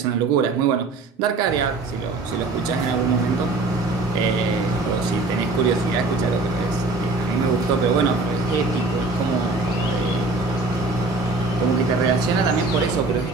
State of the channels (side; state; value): left; quieter; 3.5 dB